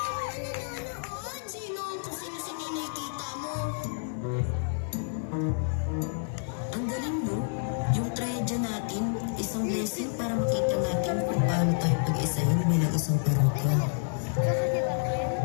blessing para makita natin kung paano tayo pag-isahin bilang isang parokya.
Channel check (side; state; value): right; silent; digital silence